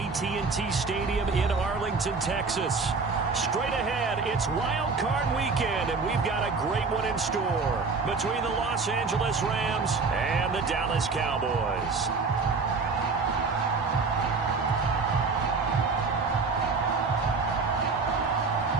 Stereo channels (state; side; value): quieter; left; 4.4 dB